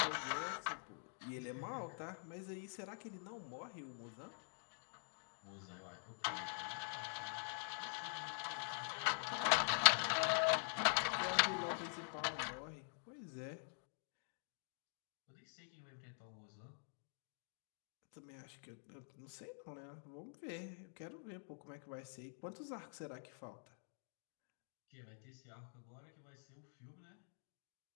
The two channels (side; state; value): right; silent; digital silence